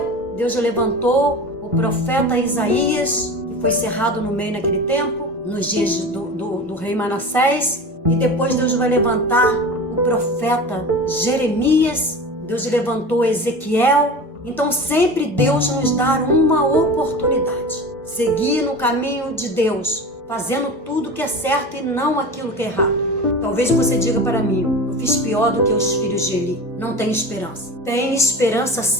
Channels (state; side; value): normal; both; correlation 0.32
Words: Deus levantou o profeta Isaías, que foi cerrado no meio naquele tempo, nos dias do rei Manassés, e depois Deus vai levantar o profeta Jeremias, Deus levantou Ezequiel. Então sempre Deus nos dá uma oportunidade, seguir no caminho de Deus, fazendo tudo que é certo e não aquilo que é errado. Talvez você diga para mim, eu fiz pior do que os filhos de Eli. Não tem esperança. Tem esperança